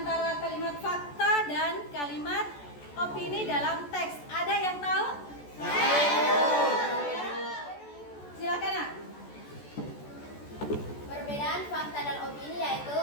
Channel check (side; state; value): right; late; 14 ms